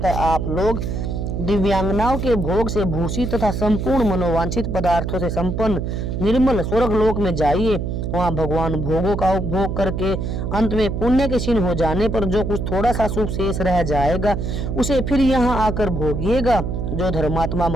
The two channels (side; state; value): right; noise; hum, 3 dB below the sound